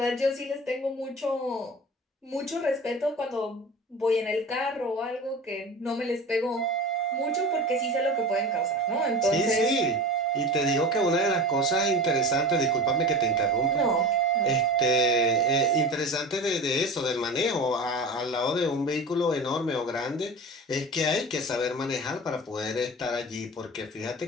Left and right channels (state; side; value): normal; both; correlation 0.33